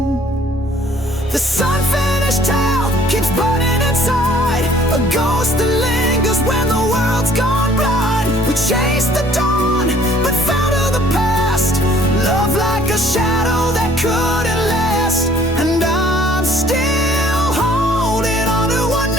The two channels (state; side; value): normal; both; correlation 0.57